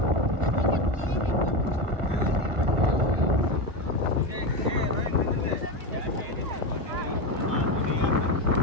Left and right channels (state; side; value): late; left; 1.5 ms